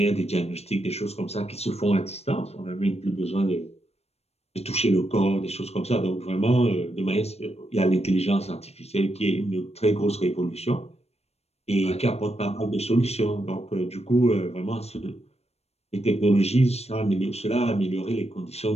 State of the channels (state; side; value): late; right; 0.30 ms